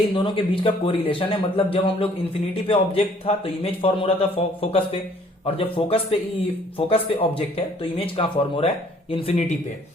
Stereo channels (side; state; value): both; normal; correlation 0.59